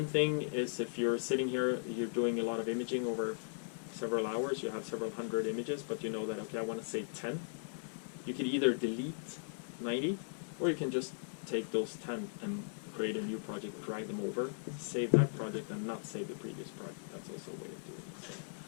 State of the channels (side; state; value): right; silent; 53 dB below the other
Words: thing is, if you're sitting here, you're doing a lot of imaging over several hours, you have several hundred images, but you know that, okay, I want to save 10. You can either delete 90, or you can just take those 10 and create a new project, drag them over, save that project, and not save the previous project. That's also a way of doing it.